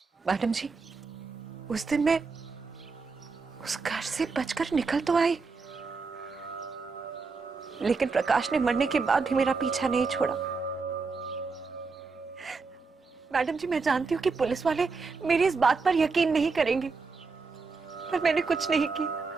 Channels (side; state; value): left; quieter; 4.5 dB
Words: मैडम जी, उस दिन मैं उस घर से बचकर निकल तो आई, लेकिन प्रकाश ने मरने के बाद भी मेरा पीछा नहीं छोड़ा। मैडम जी, मैं जानती हूँ कि पुलिस वाले मेरी इस बात पर यकीन नहीं करेंगे, पर मैंने कुछ नहीं किया,